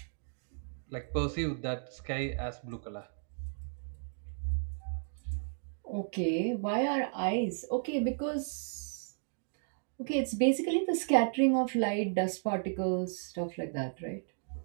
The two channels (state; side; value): silent; left; digital silence